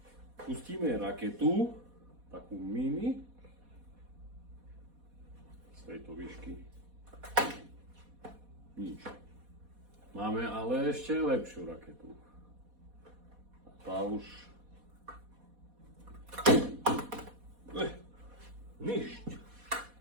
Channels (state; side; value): late; left; 4.1 ms